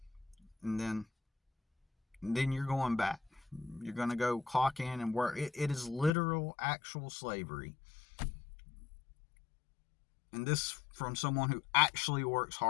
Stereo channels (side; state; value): right; drops out; at 6.1 s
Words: and then you're going back. You're going to go clock in and work. It is literal, actual slavery. And this from someone who actually works